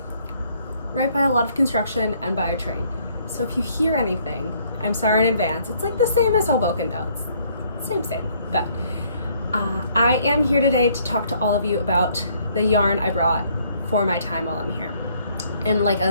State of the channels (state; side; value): inverted; both; correlation -0.65